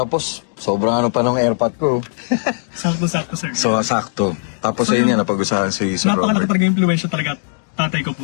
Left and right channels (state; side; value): silent; right; digital silence